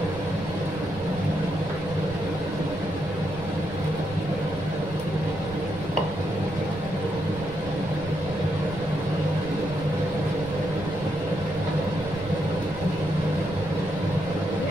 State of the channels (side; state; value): right; noise; rumble, 13 dB below the sound